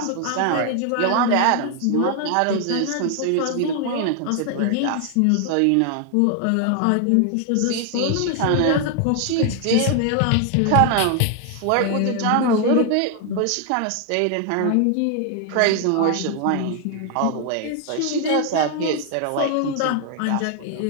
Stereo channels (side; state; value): both; different; correlation 0.00